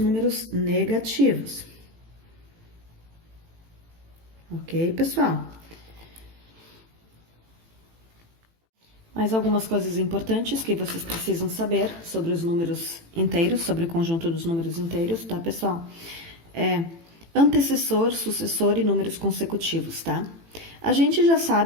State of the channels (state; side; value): late; left; 18 ms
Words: negativos. Ok, pessoal? Mais algumas coisas importantes que vocês precisam saber sobre os números inteiros, sobre o conjunto dos números inteiros, tá, pessoal? Antecessor, sucessor e números consecutivos, tá? A gente já